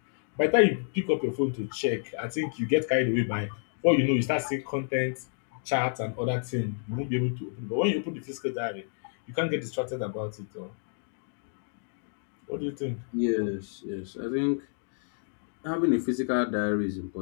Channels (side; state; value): right; silent; digital silence